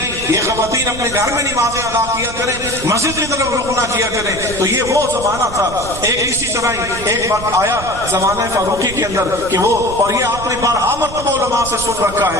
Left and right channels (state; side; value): noise; right; rumble, 11 dB below the sound